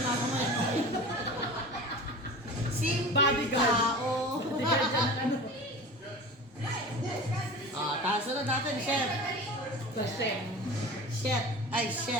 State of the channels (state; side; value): normal; both; correlation 0.35